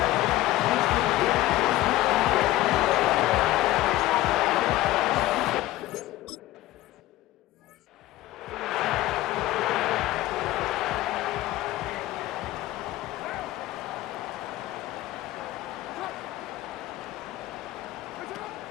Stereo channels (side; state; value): right; quieter; 16.0 dB